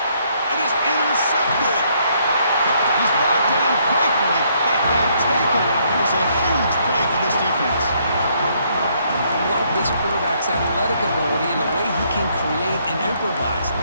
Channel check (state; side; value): inverted; both; correlation -0.69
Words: It is intercepted. He's brought down quickly, but that takeaway is a huge play for this defense. I love this quarterback's athletic ability and the way he can create and improvise.